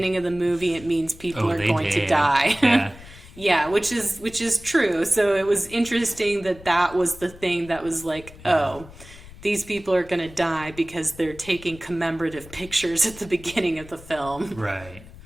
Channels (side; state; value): left; noise; rumble, 19 dB below the sound